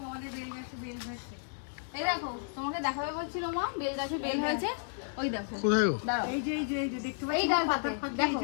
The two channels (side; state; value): right; silent; digital silence